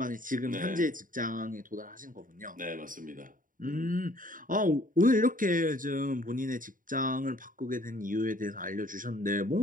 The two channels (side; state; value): left; late; 0.39 ms